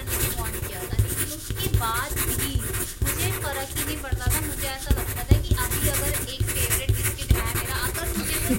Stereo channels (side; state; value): both; identical; correlation 1.00